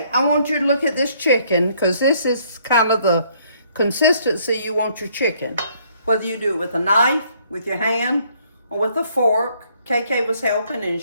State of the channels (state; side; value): inverted; both; correlation -0.65